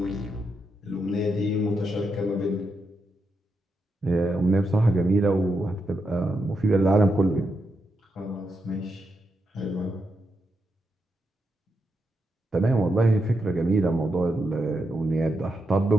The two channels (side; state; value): both; normal; correlation 0.84